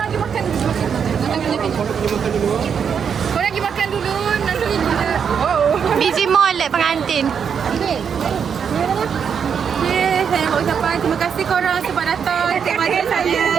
pergi makan dulu. Korang pergi makan dulu. Nanti kita. Busy molek pengantin. Saya nak ucapkan terima kasih korang sebab datang kepada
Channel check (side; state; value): left; quieter; 7.1 dB